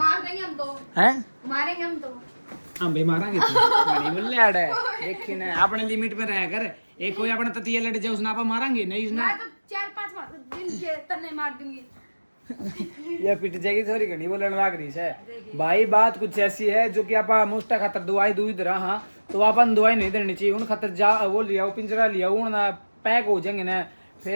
देंगे हम तो, हैं मारेंगे हम तो। हम भी मारांगे तो बड़ी बोल लड़ है देखी ना अपने लिमिट में रह कर एक कोई अपने ततिया लड़ जाए उसने आप मारांगे नहीं उसने मैं तो 4-5 दिन के तन्ने मार दूंगी। ये पिट जाएगी थोड़ी घनी बोलने लाग रही है भाई। बात कुछ ऐसी है जो कि आप मुस्टा खातर दवाई दूध रहा हाँ तो अपन दवाई नहीं देनी चाहिए उन खातर जा वो लिया वो पिंजरा लिया उन पैक हो जाएंगे ना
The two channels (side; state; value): both; inverted; correlation -1.00